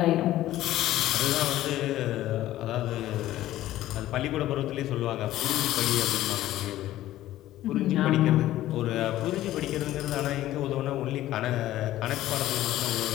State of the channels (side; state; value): right; quieter; 14.4 dB